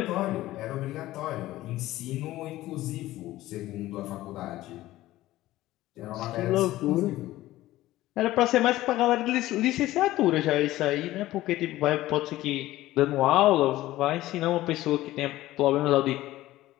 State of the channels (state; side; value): quieter; right; 16.0 dB